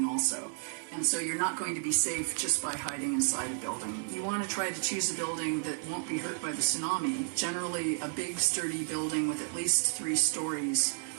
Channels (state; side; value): silent; left; 56 dB below the other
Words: also. And so you're not going to be safe just by hiding inside a building. You want to try to choose a building that won't be hurt by the tsunami. Generally, a big, sturdy building with at least 3 stories